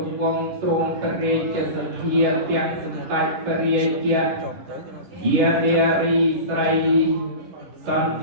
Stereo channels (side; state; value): left; late; 11 ms